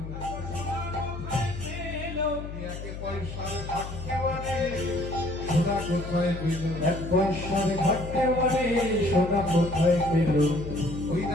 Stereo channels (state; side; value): noise; left; hum, 9 dB below the sound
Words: একে পয়সার ভাগ্যে বলে, সোনা কোথায় পেল? এক পয়সার ঘাটে মানে সোনা কোথায় পেল, ওই